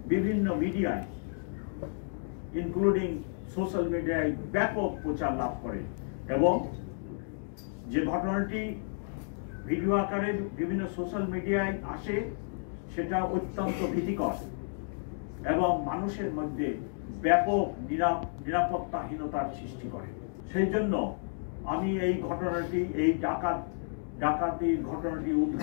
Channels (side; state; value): right; silent; digital silence